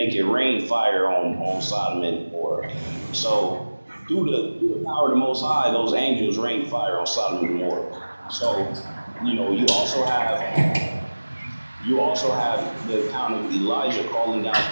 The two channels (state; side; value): inverted; both; correlation -1.00